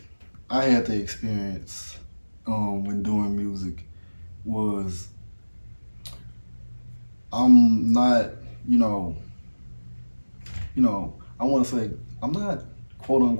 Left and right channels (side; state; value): both; inverted; correlation -1.00